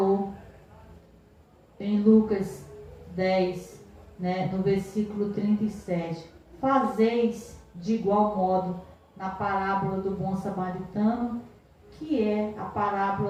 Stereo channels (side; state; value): both; identical; correlation 1.00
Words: em Lucas 10, né, no versículo 37. Fazeis de igual modo na parábola do bom samaritano, que é a